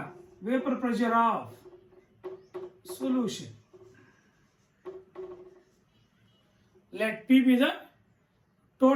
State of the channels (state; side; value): identical; both; correlation 1.00